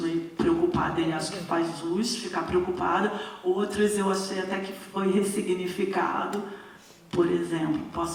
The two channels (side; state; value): both; identical; correlation 1.00